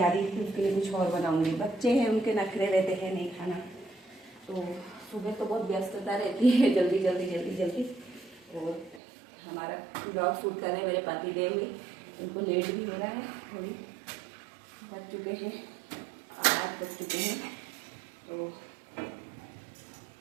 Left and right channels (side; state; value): left; drops out; at 9.0 s